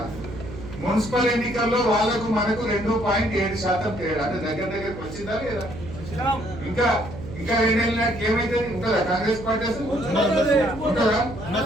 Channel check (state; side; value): noise; right; hum, 12 dB below the sound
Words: మున్సిపల్ ఎన్నికల్లో వాళ్ళకు మనకు 2.7% తేడా. అంటే దగ్గరికి వచ్చిందా లేదా? ఇంకా 2 ఏళ్ళ నాటికి ఏమైతే ఉంటుందా కాంగ్రెస్ పార్టీ? అసలు ఉంటుందా?